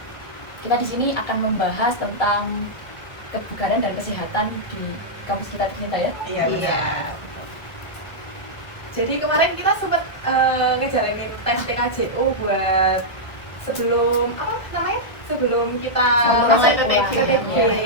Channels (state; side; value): late; right; 1.3 ms